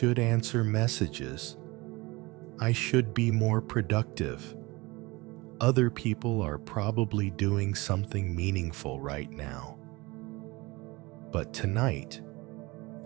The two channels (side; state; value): left; quieter; 23.2 dB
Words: answer messages. I should be more productive. Other people are probably doing something meaningful right now. But tonight,